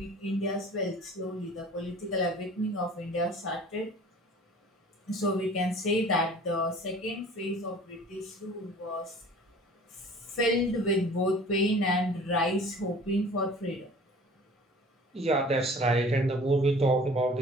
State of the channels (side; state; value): both; normal; correlation 0.46